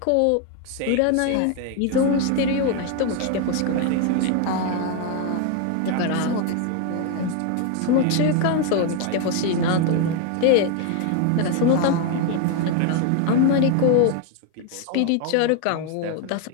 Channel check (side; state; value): both; different; correlation 0.01